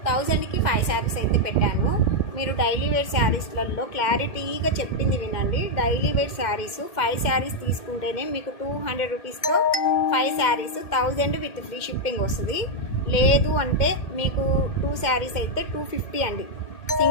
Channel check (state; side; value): late; right; 2.1 ms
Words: 1000కి 5 శారీస్ అయితే పెట్టాను. మీరు డైలీ వేర్ శారీస్లలో క్లారిటీగా చెప్పింది వినండి. డైలీ వేర్ శారీస్ 5 శారీస్ తీసుకుంటేనే మీకు 200 రూపీస్తో 5 శారీస్ 1000 విత్ ఫ్రీ షిప్పింగ్ వస్తుంది. లేదు అంటే మీకు 2 శారీస్ అయితే 250 అండి.